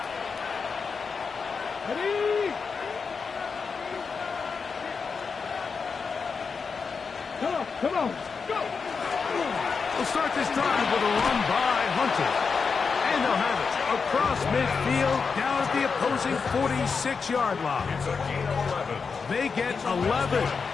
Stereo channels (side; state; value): right; quieter; 5.3 dB